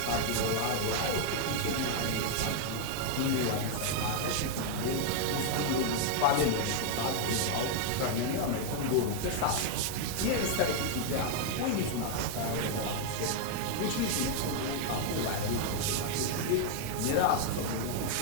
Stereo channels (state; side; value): different; both; correlation 0.00